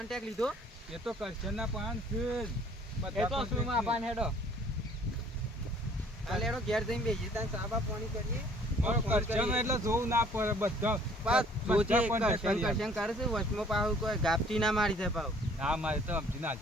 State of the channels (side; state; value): both; normal; correlation 0.56